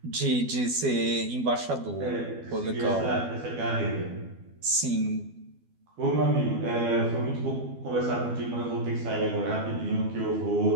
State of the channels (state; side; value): late; left; 12 ms